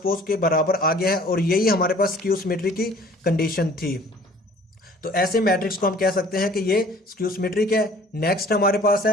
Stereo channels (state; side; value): normal; both; correlation 0.51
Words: के बराबर आ गया है, और यही हमारे पास स्क्यू सिमेट्री की कंडीशन थी। तो ऐसे मैट्रिक्स को हम कह सकते हैं कि ये स्क्यू सिमेट्रिक है। नेक्स्ट हमारे पास